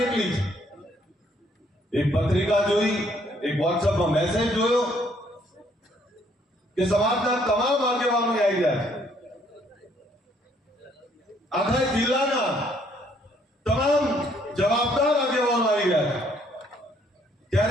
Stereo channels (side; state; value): both; normal; correlation 0.66